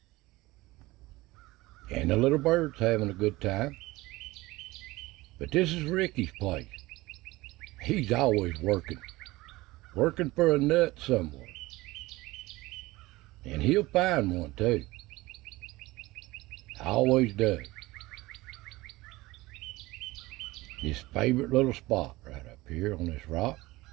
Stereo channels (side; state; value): left; quieter; 19.9 dB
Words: And the little bird's having a good time. But this is Ricky's place. He's always working for a nut somewhere. And he'll find one too. Always does. His favorite little spot right up here on this rock.